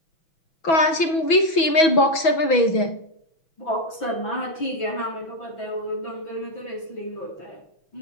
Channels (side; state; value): right; late; 6.2 ms